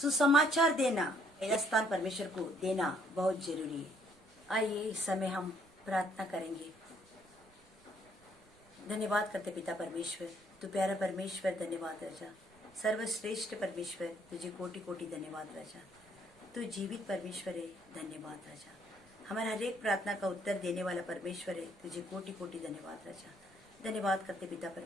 देना, पहला स्थान परमेश्वर को देना बहुत जरूरी है। आइए इस समय हम प्रार्थना करेंगे। धन्यवाद करते पिता परमेश्वर, तू प्यारा परमेश्वर, धन्यवाद राजा, सर्वश्रेष्ठ परमेश्वर, तुझे कोटि कोटि धन्यवाद राजा। तू जीवित परमेश्वर है, धन्यवाद राजा। हमारा हर एक प्रार्थना का उत्तर देने वाला परमेश्वर है, तुझे कोटि कोटि धन्यवाद राजा। धन्यवाद करते पिता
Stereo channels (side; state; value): right; noise; rumble, 29 dB below the sound